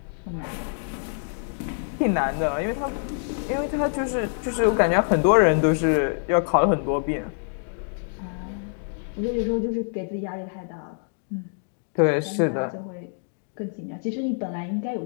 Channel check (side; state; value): right; silent; digital silence